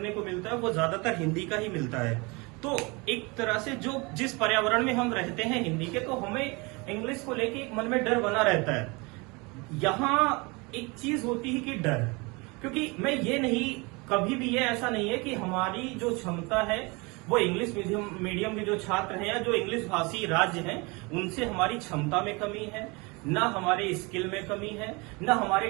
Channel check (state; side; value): quieter; left; 27.3 dB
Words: को मिलता है, वो ज्यादातर हिंदी का ही मिलता है। तो एक तरह से जो जिस पर्यावरण में हम रहते हैं हिंदी के, तो हमें इंग्लिश को लेके एक मन में डर बना रहता है। यहाँ एक चीज होती है कि डर, क्योंकि मैं ये नहीं, कभी भी ये ऐसा नहीं है कि हमारी जो क्षमता है वो इंग्लिश मीडियम के जो छात्र हैं या जो इंग्लिश भाषी राज्य हैं उनसे हमारी क्षमता में कमी है, ना हमारे स्किल में कमी है, ना हमारे